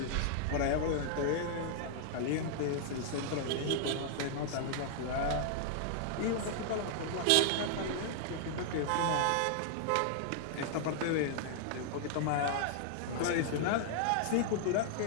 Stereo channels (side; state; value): both; different; correlation 0.00